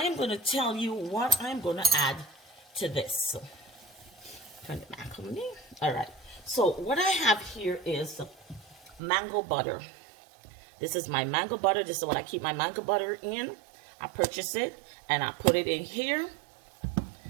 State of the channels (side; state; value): left; drops out; at 9.0 s